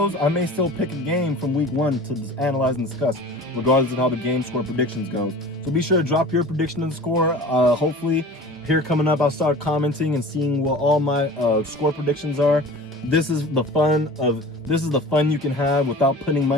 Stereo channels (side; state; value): both; normal; correlation 0.39